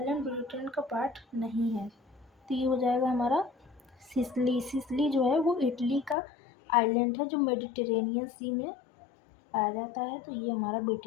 ब्रिटेन का पार्ट नहीं है, तो ये हो जाएगा हमारा सिसली। सिसली जो है वो इटली का आइलैंड है जो मेडिटेरेनियन सी में पाया जाता है, तो ये हमारा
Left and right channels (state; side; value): drops out; right; at 6.2 s